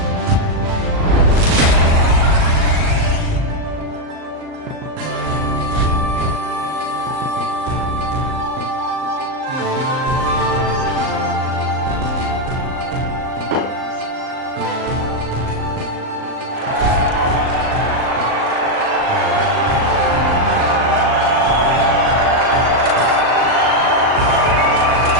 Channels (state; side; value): late; left; 38 ms